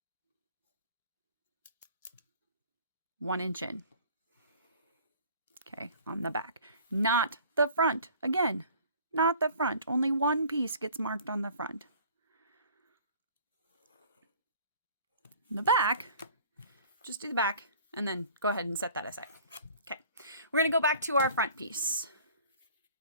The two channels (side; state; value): both; inverted; correlation -0.48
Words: one inch in. Okay, on the back, not the front. Again, not the front. Only one piece gets marked on the front. The back, just do the back and then go ahead and set that aside. Okay, we're going to go back to our front piece.